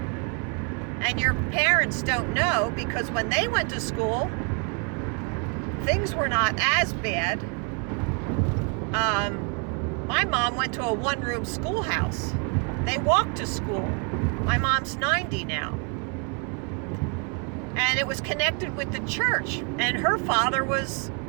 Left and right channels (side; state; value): left; quieter; 37.5 dB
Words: and your parents don't know, because when they went to school, things were not as bad. My mom went to a one-room schoolhouse. They walked to school. My mom's 90 now. And it was connected with the church. And her father was